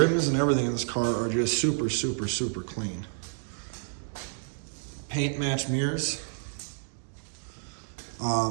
and everything in this car are just super, super, super clean. Paint match mirrors.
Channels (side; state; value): left; silent; digital silence